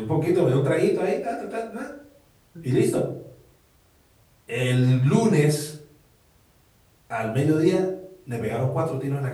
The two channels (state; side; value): identical; both; correlation 1.00